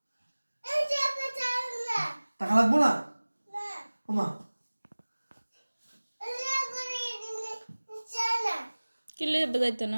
টাকা লাগবো না ওমা? কিনলে বাজাইতো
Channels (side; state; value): both; inverted; correlation -1.00